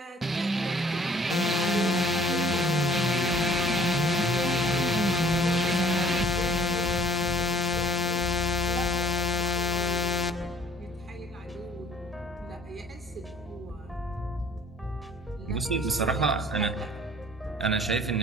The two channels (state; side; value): normal; both; correlation 0.56